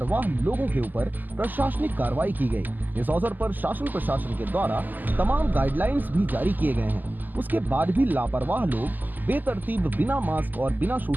लोगों के ऊपर प्रशासनिक कार्रवाई की गई। इस अवसर पर शासन प्रशासन के द्वारा तमाम गाइडलाइंस भी जारी किए गए हैं। उसके बाद भी लापरवाह लोग बेतरतीब बिना मास्क और बिना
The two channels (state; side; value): late; left; 0.085 ms